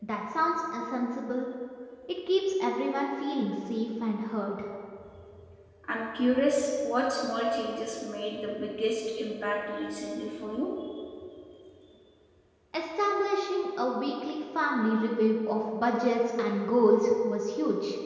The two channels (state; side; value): identical; both; correlation 1.00